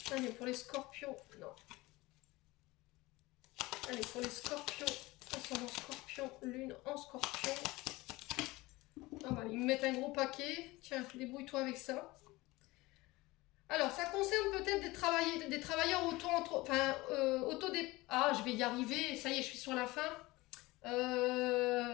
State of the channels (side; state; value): right; quieter; 20.8 dB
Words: Allez, pour les scorpions, non. Allez, pour les scorpions, ascendant scorpion, lune en scorpion. Ah bah, ils me mettent un gros paquet. Tiens, débrouille-toi avec ça. Alors, ça concerne peut-être des travailleurs Ah, je vais y arriver. Ça y est, je suis sur la fin.